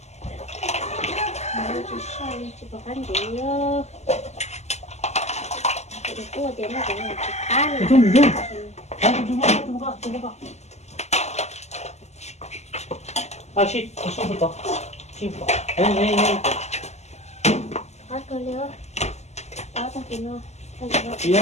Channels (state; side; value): late; right; 0.33 ms